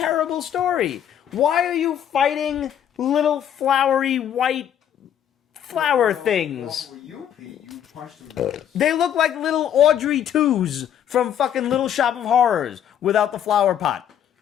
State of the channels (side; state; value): right; quieter; 9.8 dB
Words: story. Why are you fighting little flowery white flower things? Well, for you, Pete, you punched them. They look like little Audrey 2s from fucking Little Shop of Horrors without the flower pot.